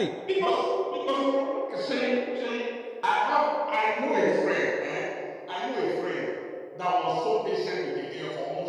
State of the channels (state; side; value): identical; both; correlation 1.00